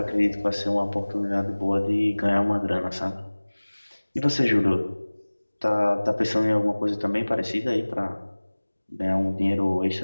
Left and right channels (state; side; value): inverted; both; correlation -1.00